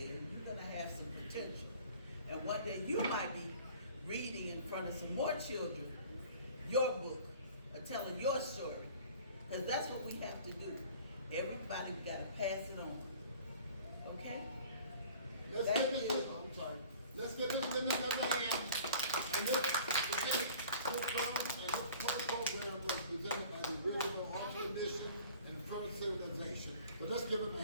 and you're going to have some potential. And one day you might be reading in front of some more children your book, A telling your story. Because that's what we have to do. Everybody got to pass it on. Okay? Let's Thank give you. this, I'm sorry. Let's give this women another hand. And this program was presented by the original Arts Commission and First Civilization. So let's give them a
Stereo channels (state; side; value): inverted; both; correlation -0.48